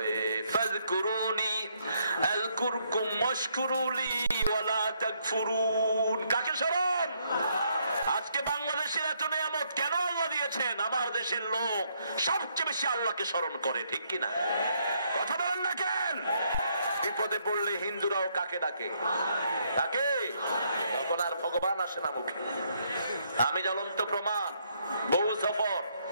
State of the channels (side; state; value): both; inverted; correlation -0.72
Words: ফাযকুরুনি আযকুরকুম ওয়াশকুরুলি ওয়ালা তাকফুরুন। কাকে স্মরণ? আজকে বাংলাদেশের এত নিয়ামত কেন আল্লাহ দিয়েছেন? আমার দেশের লোক সবচেয়ে বেশি আল্লাহকে স্মরণ করে, ঠিক কিনা? কথা বলেন না কেন? বিপদে পড়লে হিন্দুরাও কাকে ডাকে? ডাকে। তখন আর ভগবান আসে না মুখে। আমি জ্বলন্ত প্রমাণ। বহু সফর